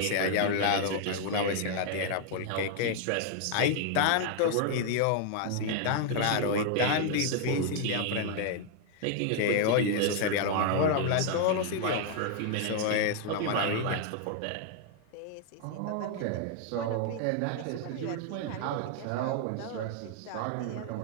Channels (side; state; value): both; different; correlation 0.00